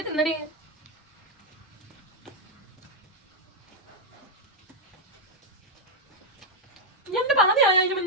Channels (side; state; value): both; normal; correlation -0.01